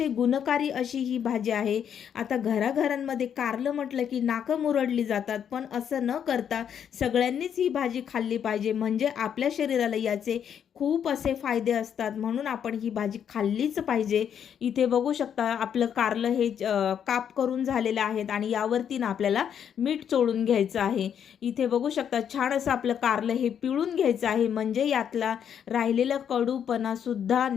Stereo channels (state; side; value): quieter; right; 8.5 dB